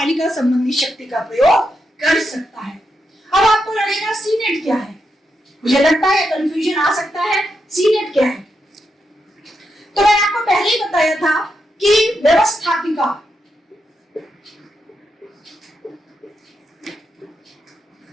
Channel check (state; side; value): normal; both; correlation 0.84